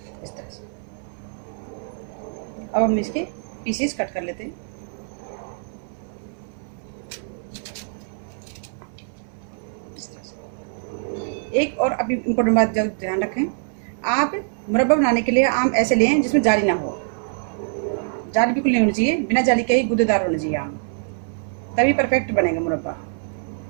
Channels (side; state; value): left; silent; 59 dB below the other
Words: इस तरह से। अब हम इसके पीसेस कट कर लेते हैं। एक और अभी इम्पोर्टेंट बात जरूर ध्यान रखें, आप मुरब्बा बनाने के लिए आम ऐसे लें जिसमें जाली ना हो। जाली बिल्कुल नहीं होनी चाहिए, बिना जाली के ही गूदेदार होना चाहिए आम, तभी परफेक्ट बनेगा मुरब्बा।